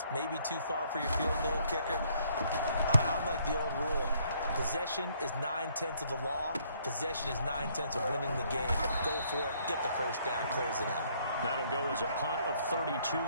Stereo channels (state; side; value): inverted; both; correlation -0.66